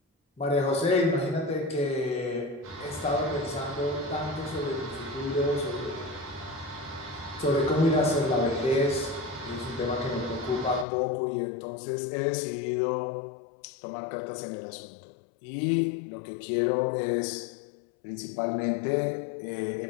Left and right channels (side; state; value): right; drops out; at 10.9 s